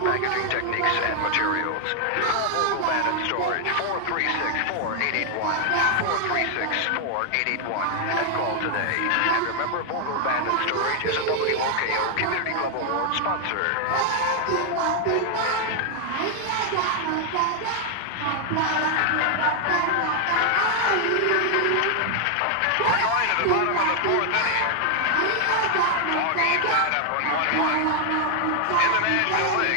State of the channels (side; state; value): both; different; correlation 0.00